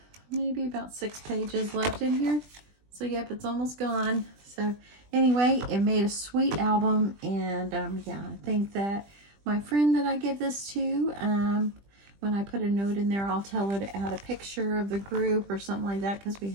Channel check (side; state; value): left; late; 20 ms